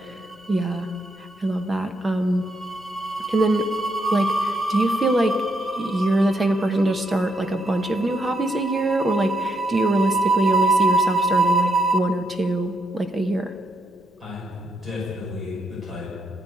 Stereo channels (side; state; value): both; normal; correlation 0.78